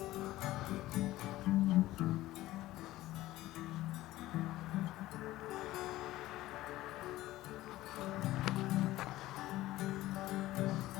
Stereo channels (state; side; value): quieter; right; 16.4 dB